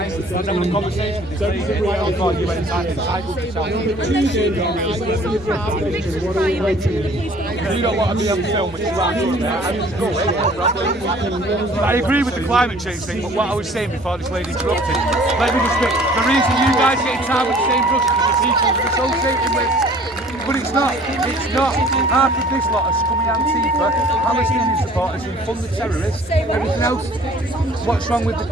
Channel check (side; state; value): both; normal; correlation 0.52